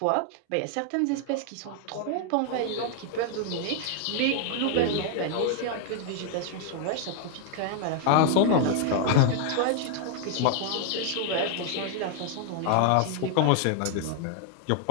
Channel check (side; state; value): both; different; correlation 0.00